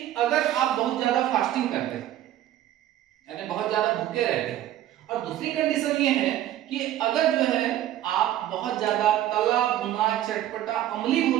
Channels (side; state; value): left; quieter; 12.8 dB